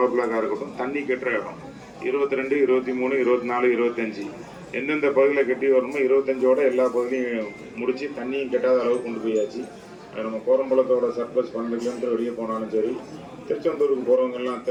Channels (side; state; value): both; identical; correlation 1.00